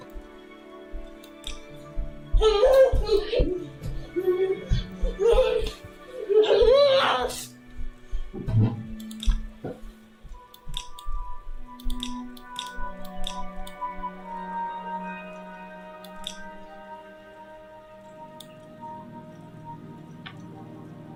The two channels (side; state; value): both; identical; correlation 1.00